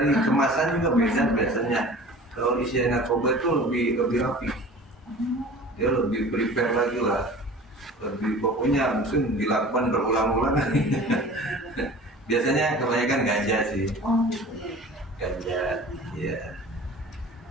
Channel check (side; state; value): both; normal; correlation 0.41